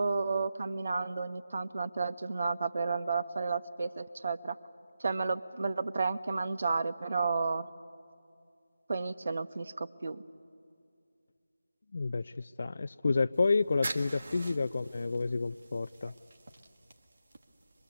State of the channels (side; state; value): both; inverted; correlation -0.87